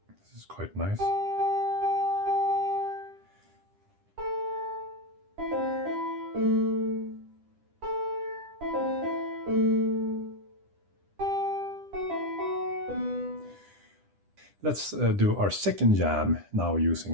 This is quite nice. Let's do our second jam now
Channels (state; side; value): late; left; 10 ms